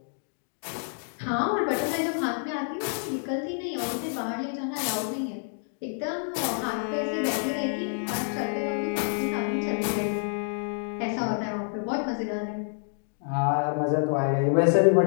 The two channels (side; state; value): right; silent; 59 dB below the other